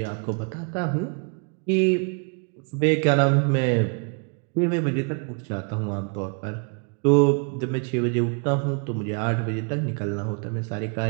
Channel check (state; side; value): quieter; left; 36.7 dB